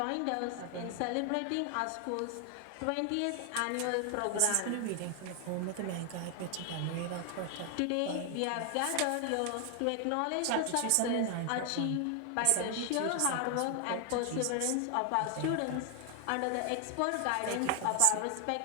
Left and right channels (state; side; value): different; both; correlation 0.00